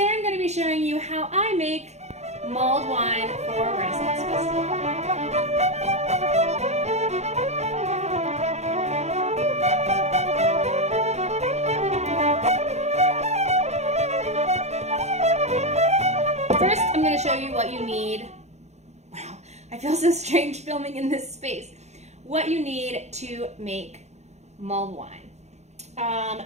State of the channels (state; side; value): late; left; 0.32 ms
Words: I'm going to be showing you how I make mulled wine for Renaissance Festival. First, I'm going to show you what you need. Wow, I feel so strange filming in this space. What you need to make mulled wine.